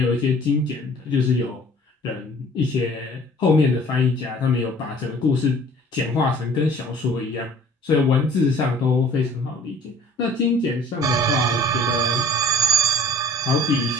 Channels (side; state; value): both; normal; correlation 0.50